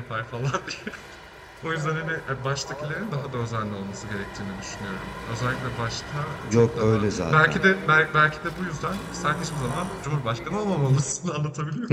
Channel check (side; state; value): both; identical; correlation 1.00